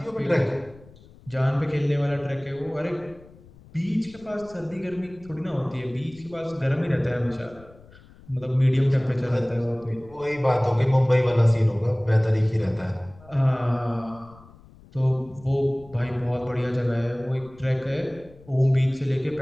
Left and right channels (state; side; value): noise; left; rumble, 23 dB below the sound